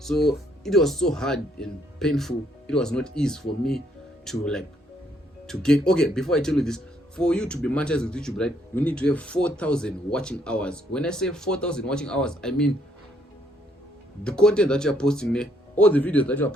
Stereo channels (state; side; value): normal; both; correlation 0.70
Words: it was so hard and painful. It was not easy for me to get. Okay, before I tell you this, for you to be monetized with YouTube, right, you need to have 4,000 watching hours. When I say 4,000 watching hours, I mean the content that you are posting there, all the videos that you are